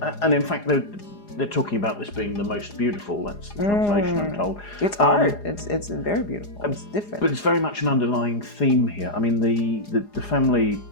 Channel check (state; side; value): late; right; 4.9 ms